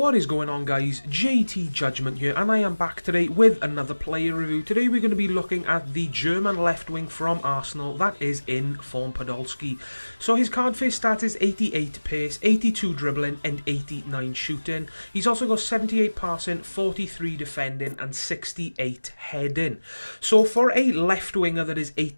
is going on, guys? JTJudgment here, and I am back today with another player review. Today we're going to be looking at the German left wing from Arsenal, that is Inform Podolski. So his card face stat is 88 pace, 82 dribbling and 89 shooting. He's also got 78 passing, 43 defending and 68 heading. So for a left winger that is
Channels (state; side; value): inverted; both; correlation -1.00